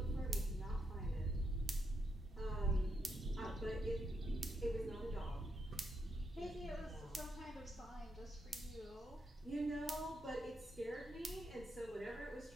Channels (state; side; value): normal; both; correlation 0.82